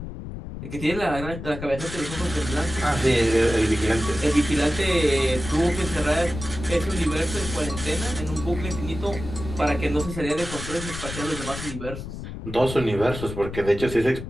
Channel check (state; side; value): noise; left; rumble, 9 dB below the sound